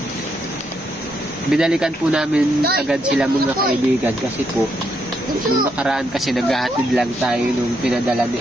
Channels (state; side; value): normal; both; correlation 0.77